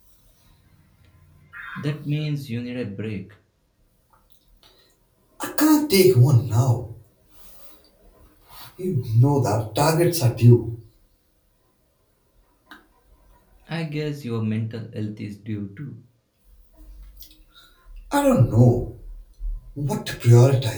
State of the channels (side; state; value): both; identical; correlation 1.00